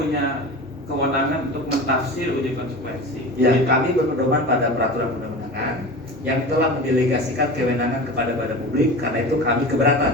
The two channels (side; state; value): both; normal; correlation 0.31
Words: kewenangan untuk mentafsir uji konsekuensi. Ya, Jadi, kami berpedoman pada peraturan perundang-undangan yang telah mendelegasikan kewenangan kepada badan publik, karena itu kami